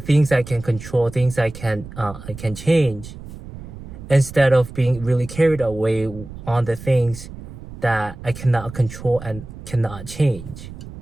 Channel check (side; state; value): right; noise; rumble, 14 dB below the sound